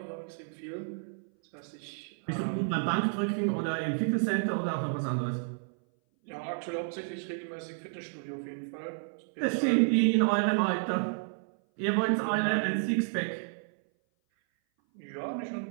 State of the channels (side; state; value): left; silent; 57 dB below the other